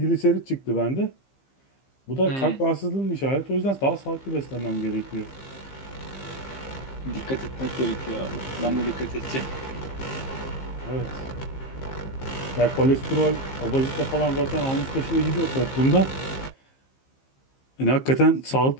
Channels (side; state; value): right; late; 15 ms